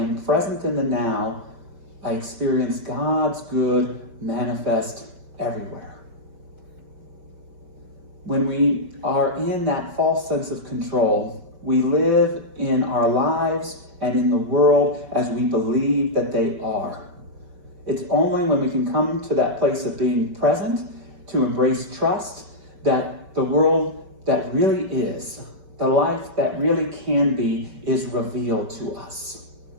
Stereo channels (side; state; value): left; late; 5.2 ms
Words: present in the now, I experience God's good manifest everywhere. When we are in that false sense of control, we live in our lives and in the world as we believe that they are. It's only when we can come to that place of being present, to embrace trust, that the world that really is, the life that really can be, is revealed to us.